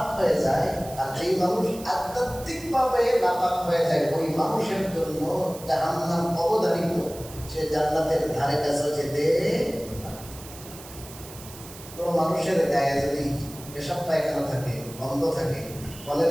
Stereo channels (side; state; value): right; noise; hiss, 16 dB below the sound